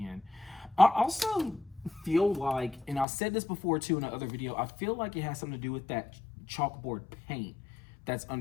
I also feel like, and I said this before too in another video, I feel like it has something to do with that chalkboard paint that's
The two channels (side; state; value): right; drops out; at 3.1 s